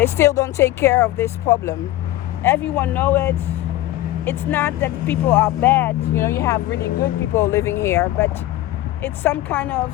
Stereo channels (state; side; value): quieter; right; 15.3 dB